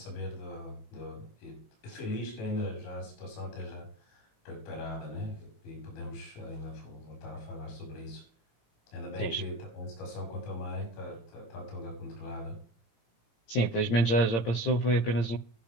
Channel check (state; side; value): late; right; 17 ms